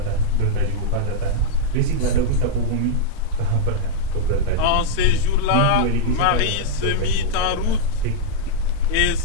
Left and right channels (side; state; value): both; different; correlation -0.02